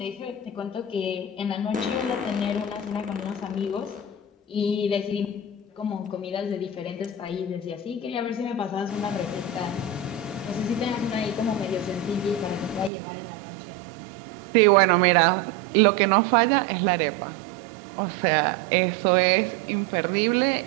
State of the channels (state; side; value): drops out; left; at 12.9 s